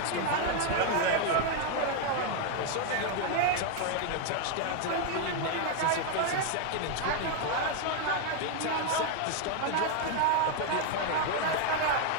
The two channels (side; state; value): both; different; correlation 0.00